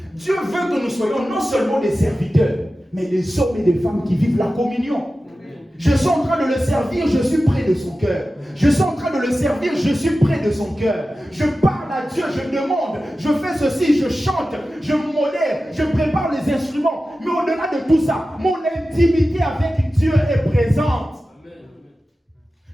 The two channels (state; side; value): normal; both; correlation 0.94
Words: Dieu veut que nous soyons non seulement des serviteurs, mais des hommes et des femmes qui vivent la communion. Je suis en train de le servir, je suis près de son cœur. Je suis en train de le servir, je suis près de son cœur. Je parle à Dieu, je demande, je fais ceci, je chante, je modère, je prépare les instruments. Mais au-delà de tout ça, mon intimité avec Dieu est présente.